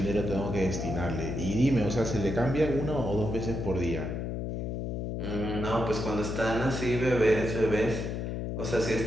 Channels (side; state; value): left; noise; hum, 3 dB below the sound